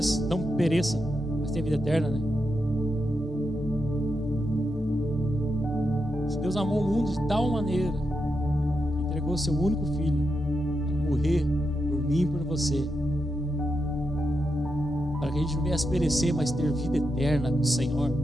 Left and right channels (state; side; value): normal; both; correlation 0.85